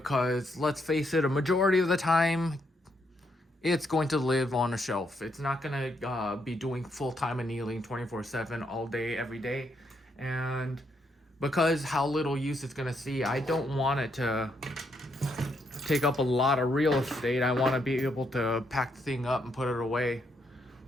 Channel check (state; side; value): normal; both; correlation 0.76